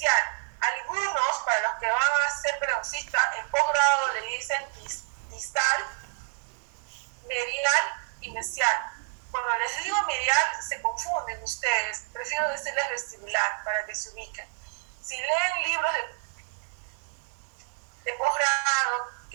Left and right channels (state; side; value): silent; left; 59 dB below the other